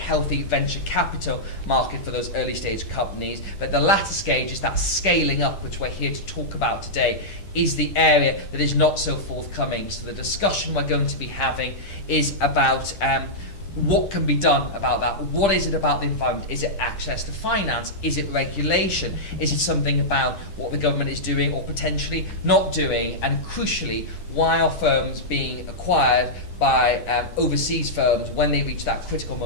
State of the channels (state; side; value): late; right; 10 ms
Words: venture capital market for those early stage companies, but the latter stage is that scaling up, which we're here to talk about today, is the area that is not so forthcoming. So the discussion we're going to be having is about what can be done about that. What is it about the environment? Is it access to finance? Is it regulation? Is it something about what the government is doing or potentially not doing? And crucially, why are firms being acquired by overseas firms when they reach that critical